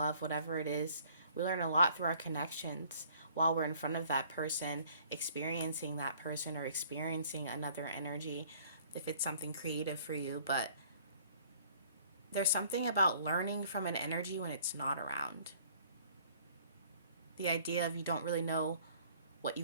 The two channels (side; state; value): both; inverted; correlation -0.56